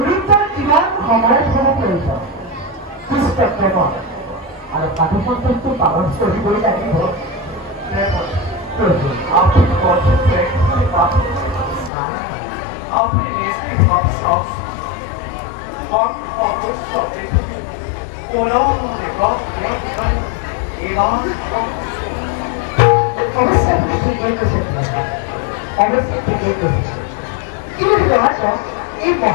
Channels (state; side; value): drops out; right; at 11.9 s